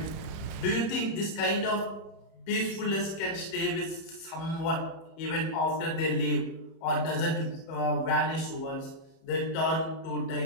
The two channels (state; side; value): late; right; 31 ms